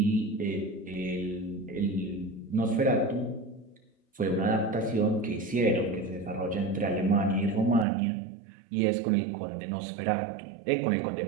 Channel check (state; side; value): drops out; left; at 7.9 s